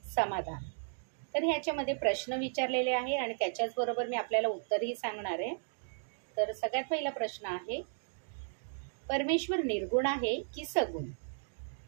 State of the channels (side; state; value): left; silent; digital silence